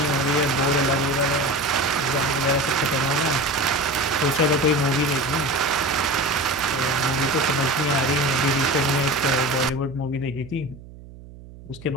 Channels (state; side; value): noise; right; hum, 18 dB below the sound